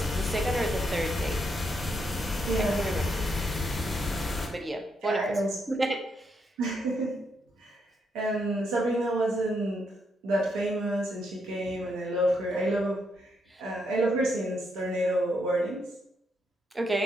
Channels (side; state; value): both; normal; correlation 0.78